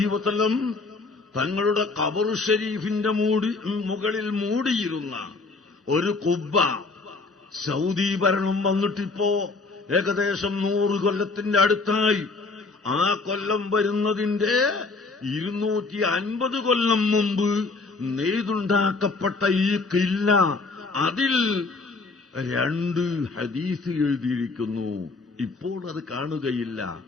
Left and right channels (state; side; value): quieter; right; 3.8 dB